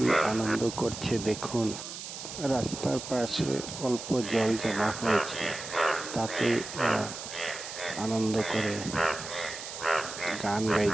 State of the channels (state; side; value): noise; right; hiss, 9 dB below the sound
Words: আনন্দ করছে দেখুন। রাস্তার পাশে অল্প জল জমা হয়েছে, তাতেই এরা আনন্দ করে গান